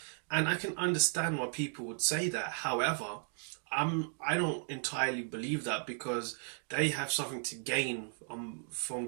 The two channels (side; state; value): left; silent; 54 dB below the other